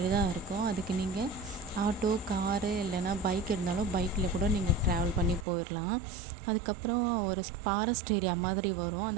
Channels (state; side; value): drops out; left; at 5.5 s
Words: தான் இருக்கும். அதுக்கு நீங்கள் ஆட்டோ, காரு இல்லைன்னா பைக் இருந்தாலும் பைக்கில் கூட நீங்கள் ட்ராவல் பண்ணி போயிடலாம். அதுக்கப்புறம் ஒரு ஃபாரஸ்ட் ஏரியா மாதிரி வரும்.